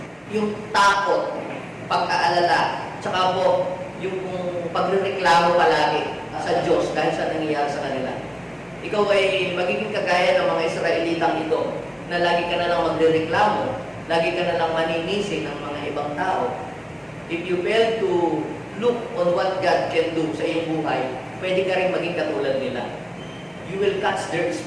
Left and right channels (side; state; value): both; identical; correlation 1.00